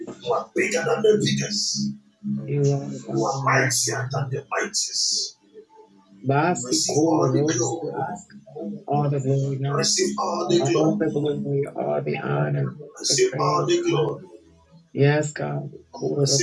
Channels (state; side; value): identical; both; correlation 1.00